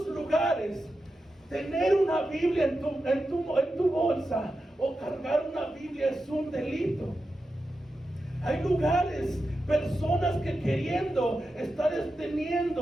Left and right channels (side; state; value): both; normal; correlation 0.90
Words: lugares tener una Biblia en tu bolsa o cargar una Biblia es un delito. Hay lugares, personas que queriendo estar